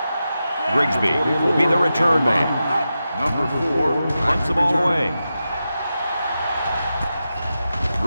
Grigsby will be the return man. Number 4. Punts the ball away.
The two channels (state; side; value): inverted; both; correlation -0.91